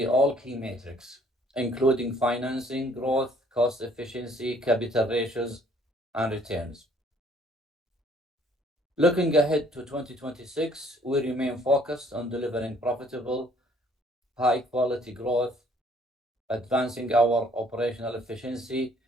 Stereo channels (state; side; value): normal; both; correlation 0.61